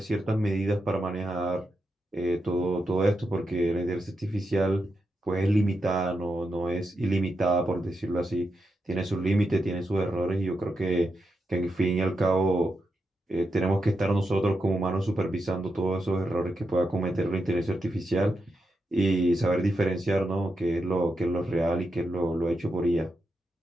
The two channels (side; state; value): both; normal; correlation 0.86